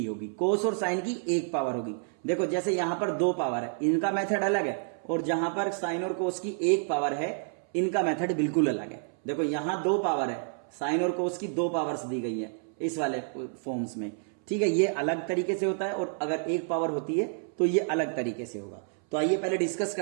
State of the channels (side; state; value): left; silent; 58 dB below the other